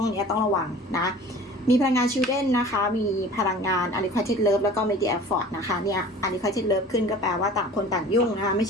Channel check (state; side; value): normal; both; correlation 0.43